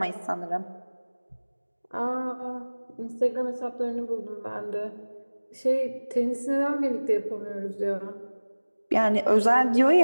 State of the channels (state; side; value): inverted; both; correlation -1.00